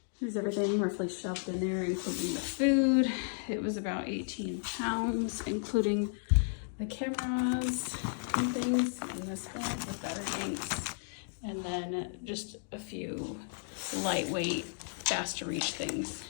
There's everything roughly shoved in there, including the food. It was about 18 pounds, including the cameras and things in this bag with battery banks. And then just a few lightweight, fast to reach things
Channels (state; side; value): silent; right; digital silence